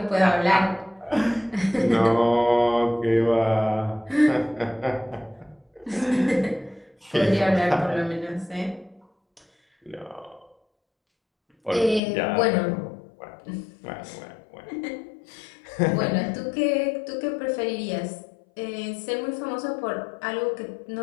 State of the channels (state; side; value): drops out; right; at 12.0 s